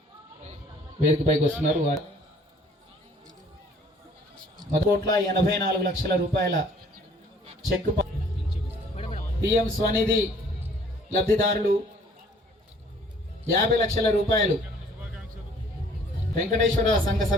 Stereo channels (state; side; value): normal; both; correlation 0.57